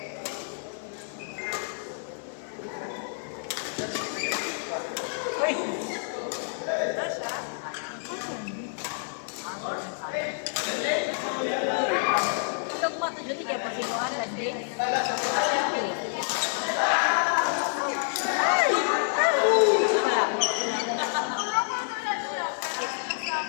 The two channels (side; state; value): right; silent; 57 dB below the other